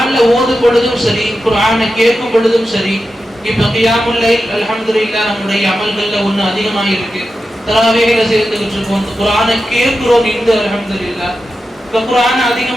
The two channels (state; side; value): normal; both; correlation 0.91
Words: ஓதும் பொழுதும் சரி, குர்ஆனை கேட்கும் பொழுதும் சரி, இப்ப கியாமுல் லைல் அல்ஹம்துலில்லாஹ் நம்முடைய அமல்கள்ல ஒண்ணு அதிகமாக இருக்கு. தராவீஹ்ல சேர்ந்துகிட்டு இருக்கோம், குர்ஆனை கேட்கிறோம். இந்த அல்ஹம்துலில்லாஹ் இப்ப குர்ஆனை